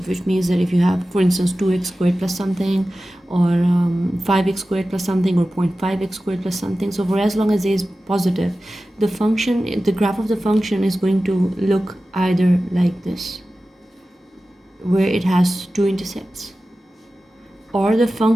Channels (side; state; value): both; normal; correlation 0.95